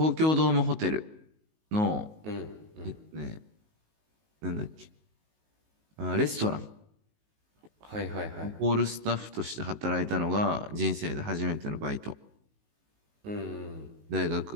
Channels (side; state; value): left; late; 19 ms